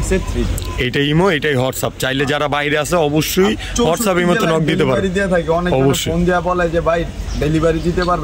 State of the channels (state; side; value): identical; both; correlation 1.00